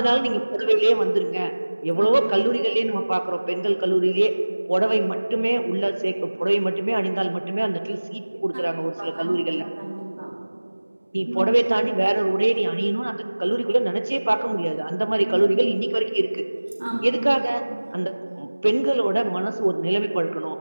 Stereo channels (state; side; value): inverted; both; correlation -1.00